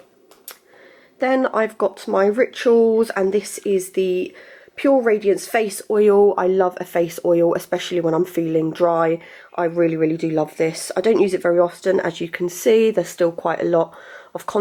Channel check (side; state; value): both; identical; correlation 1.00